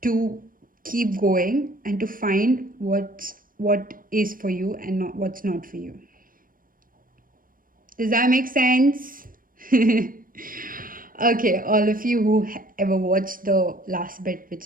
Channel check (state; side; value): late; left; 0.41 ms